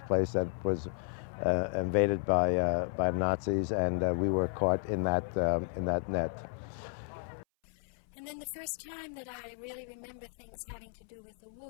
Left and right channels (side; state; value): right; silent; 56 dB below the other